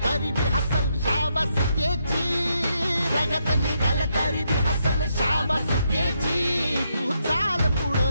तरी बी हसल शाबास त्याची, रगत निघल तरी बी हसल शाबास त्याची। तू चाल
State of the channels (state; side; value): inverted; both; correlation -0.79